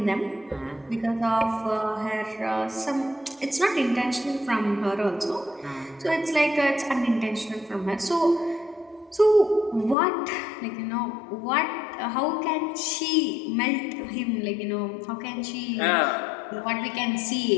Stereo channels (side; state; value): right; drops out; at 10.0 s